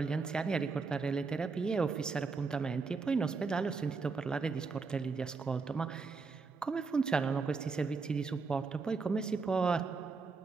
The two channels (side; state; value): left; quieter; 4.6 dB